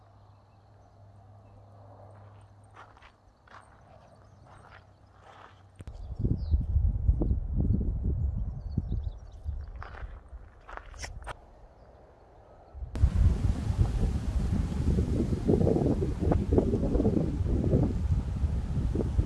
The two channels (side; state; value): both; identical; correlation 1.00